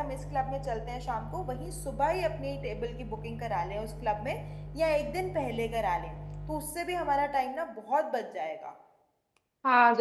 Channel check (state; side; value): identical; both; correlation 1.00